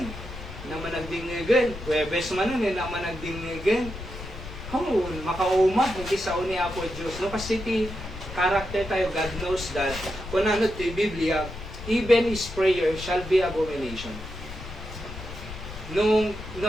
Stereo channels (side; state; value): left; noise; rumble, 11 dB below the sound